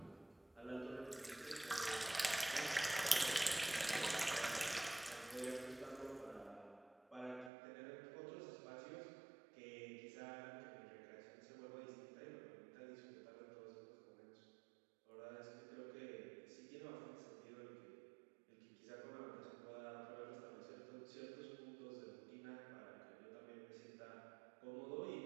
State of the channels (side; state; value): left; drops out; at 7.5 s